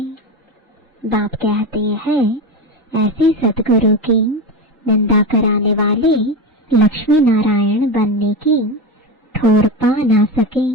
बाप कहते हैं, ऐसे सद्गुरु की निंदा कराने वाले लक्ष्मी नारायण बनने की ठोर पा ना सके।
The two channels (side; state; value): both; normal; correlation 0.19